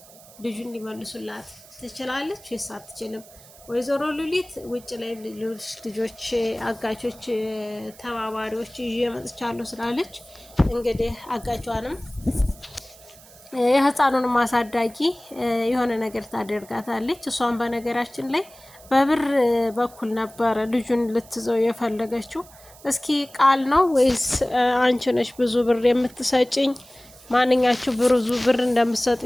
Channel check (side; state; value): right; noise; hiss, 22 dB below the sound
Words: ልጁን ሊመልሱላት ትችላለች ወይስ አትችልም? ወይዘሮ ሉሊት ውጭ ላይ ልጆች አጋቾች ተባባሪዎች ይዤ መጥቻለሁ ስላለች እንግዲህ አጋቿንም የህፃኑንም አሳዳጊ የሆነ ነገር ታደርጋታለች። እሷን በነገራችን ላይ በብር በኩል ነበረ ልጁን ልትዘው የፈለገችው። እስኪ ቃል ነው ወይስ አንቺ ነሽ ብዙ ብር የምትሰጭኝ? ማንኛችሁ ብዙ ብር